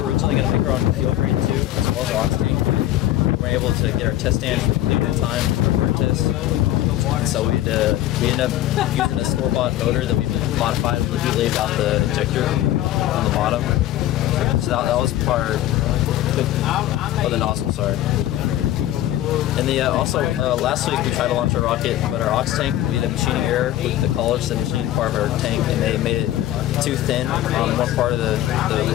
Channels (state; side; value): quieter; right; 13.8 dB